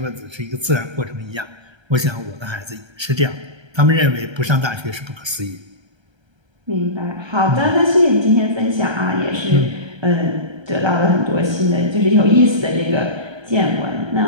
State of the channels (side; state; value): left; late; 1.3 ms